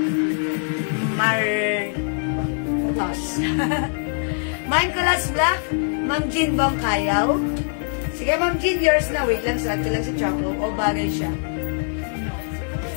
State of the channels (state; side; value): silent; right; 64 dB below the other